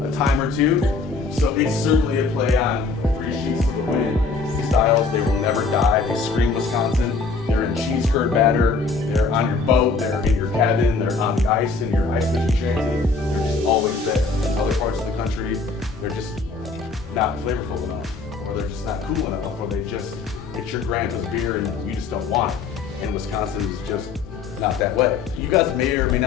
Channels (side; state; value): right; quieter; 4.3 dB